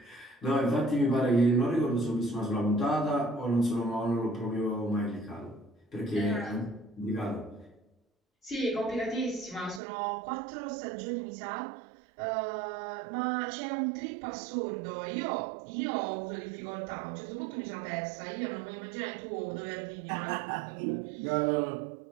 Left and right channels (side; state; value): left; drops out; at 9.8 s